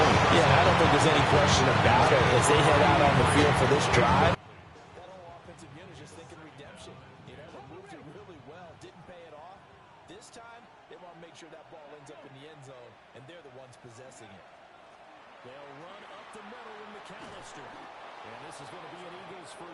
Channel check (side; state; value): both; identical; correlation 1.00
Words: Yeah, I don't think there's any question about it as they head out on the field for this drive. That whole offensive unit is just thinking redemption. You know, they moved it really well, didn't pay it off. This time, they want to make sure that ball ends up in the end zone, and they're the ones possessing it. They'll run up the middle with McAllister. And this is going to be an Eagles